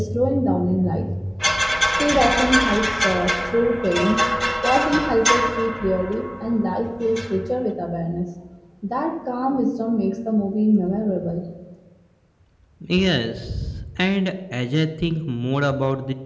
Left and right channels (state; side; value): identical; both; correlation 1.00